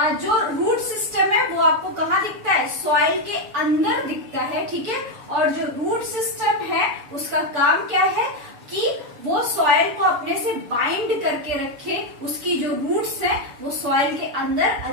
जो रूट सिस्टम है वो आपको कहाँ दिखता है, सॉइल के अंदर दिखता है, ठीक है। और जो रूट सिस्टम है उसका काम क्या है कि वो सॉइल को अपने से बाइंड करके रखे, उसकी जो रूट्स है वो सॉइल के अंदर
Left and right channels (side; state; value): left; late; 6.9 ms